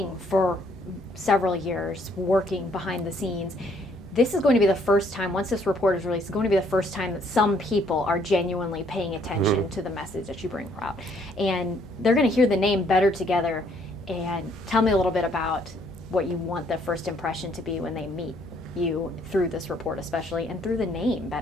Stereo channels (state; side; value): normal; both; correlation 0.66